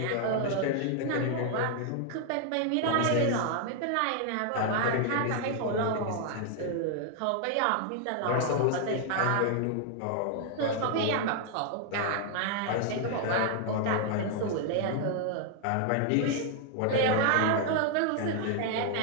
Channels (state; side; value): different; both; correlation 0.00